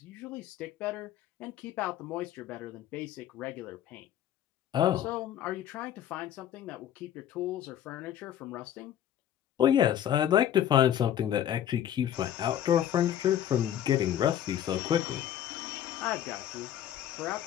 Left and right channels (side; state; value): right; quieter; 10.8 dB